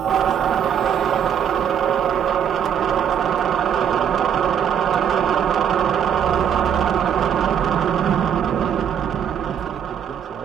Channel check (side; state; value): left; quieter; 8.5 dB